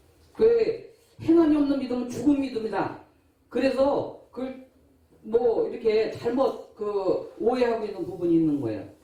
그 행함이 없는 믿음은 죽은 믿음이다. 그래서 그걸 뭐 이렇게 잘못 오해하고 있는 부분이 있는 거예요.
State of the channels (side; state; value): both; identical; correlation 1.00